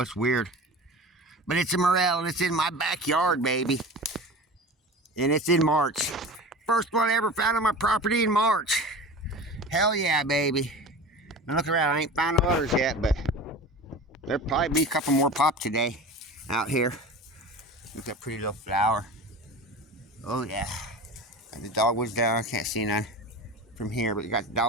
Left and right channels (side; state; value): both; normal; correlation 0.34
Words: weird. But it's a morel, and it's in my backyard, baby. And it's in March. First one I ever found on my property in March. Hell yeah, baby. Now look around. I ain't found no others yet, but there'll probably be a couple more pop today out here. Look at that pretty little flower. Oh yeah. And the dogwood's down. I can't see none from here, but you got the